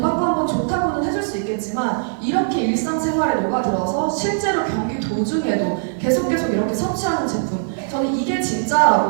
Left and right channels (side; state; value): left; silent; digital silence